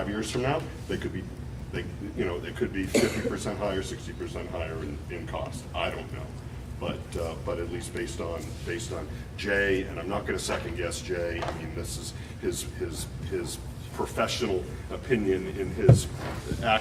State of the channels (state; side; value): identical; both; correlation 1.00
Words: years from now, they could be 50% higher, 60% higher in cost. I don't know, but at least based on Jay, and I'm not going to second guess Jay. I mean, this is his professional opinion in his